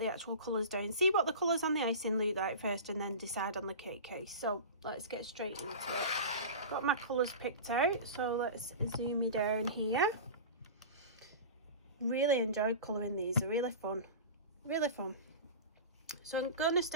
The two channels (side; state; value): both; inverted; correlation -0.31